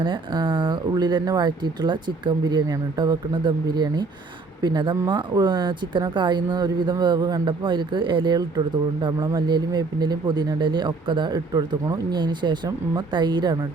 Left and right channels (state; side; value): quieter; left; 3.8 dB